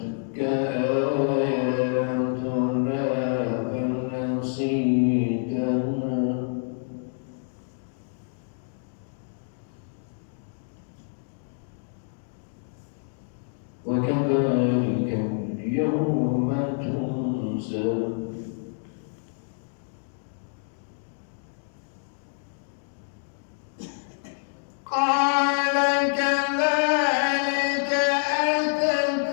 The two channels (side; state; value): right; silent; 60 dB below the other